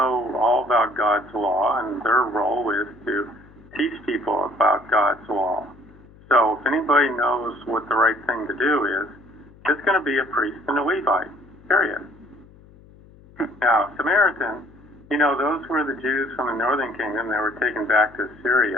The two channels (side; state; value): left; noise; hum, 24 dB below the sound